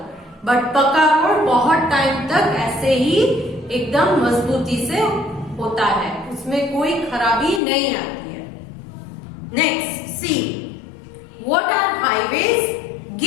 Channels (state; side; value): drops out; right; at 7.6 s